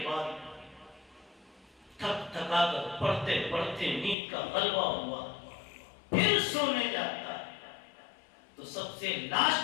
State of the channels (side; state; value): right; drops out; at 4.2 s